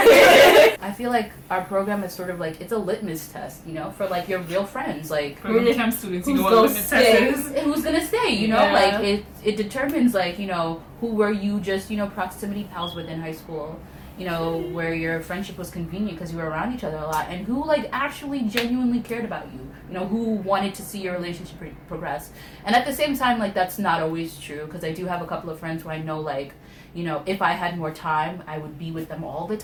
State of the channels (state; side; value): identical; both; correlation 1.00